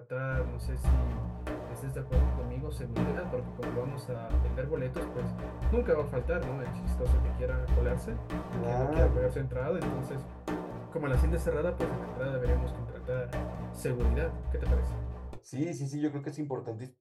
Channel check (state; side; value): identical; both; correlation 1.00